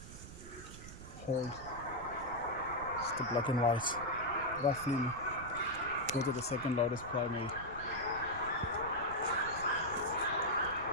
hold. It's the black and white. Roughly, those are the second loudest primate.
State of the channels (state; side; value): noise; right; rumble, 13 dB below the sound